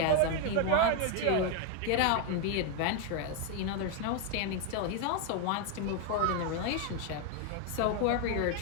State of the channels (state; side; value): different; both; correlation 0.01